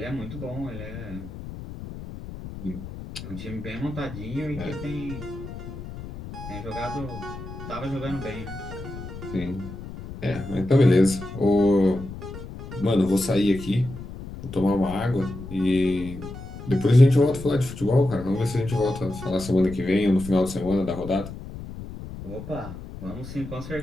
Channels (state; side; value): noise; left; rumble, 11 dB below the sound